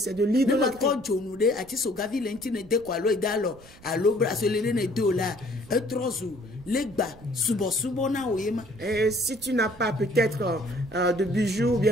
de l'idolâtrie. Et si tu n'as pas peut-être de bijoux ou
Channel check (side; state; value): right; noise; rumble, 22 dB below the sound